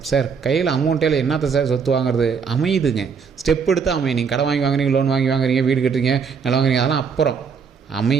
சார் கையில் அமௌண்ட்டில் என்னத்தை சார் சொத்து வாங்குறது, அமையுதுங்க. ஸ்டெப் எடுத்து அமையும். நீங்கள் கடன் வாங்கி வாங்குறீங்க, லோன் வாங்கி வாங்குறீங்க, வீடு கட்டுறீங்க, நிலம் வாங்குறீங்க, அதெல்லாம் அப்புறம்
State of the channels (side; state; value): left; quieter; 6.1 dB